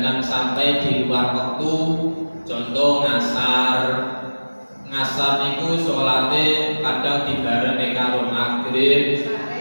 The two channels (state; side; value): inverted; both; correlation -1.00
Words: sampai di luar waktu. Contoh ngasar. Ngasar niku salate kadang dibareng karo maghrib,